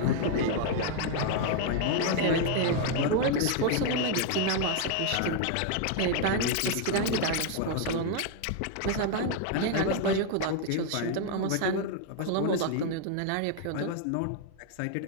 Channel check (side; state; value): both; different; correlation 0.00